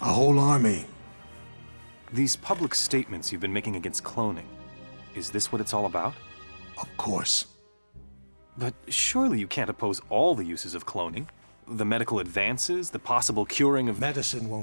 A whole army. These public statements you've been making against cloning, is this what it's all about? Of course. But surely you can't oppose all the uses of cloning. The medical advances, the possible curing of... Medicine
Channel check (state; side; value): inverted; both; correlation -1.00